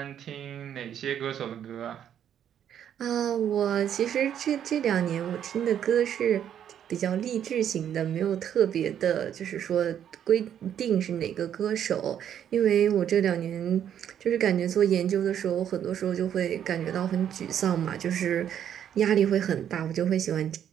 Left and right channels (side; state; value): left; quieter; 9.6 dB